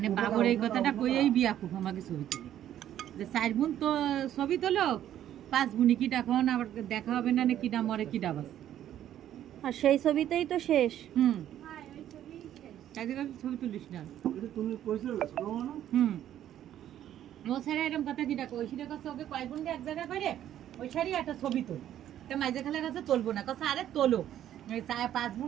বাবুর এই কথাটা কইয়েই বিয়া খুব আমাকে ছবি তুলি যে 4 বোন তো ছবি তোলো 5 বোনই কিটা এখন আবার দেখা হবে না কিটা মরে কিটা বাস আর সেই ছবিতেই তো শেষ। ছবি তুলিস না তুমি কইছো না ও ছাড়া এরকম কথা কিটা কই সেটা কাছে ওকে কয় বোন এক জায়গায় করে ওই সারি একটা ছবি তোল তা মাঝে খালে কাছে তুলবো না কাছে আরে তোলো 5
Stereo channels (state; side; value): quieter; left; 11.4 dB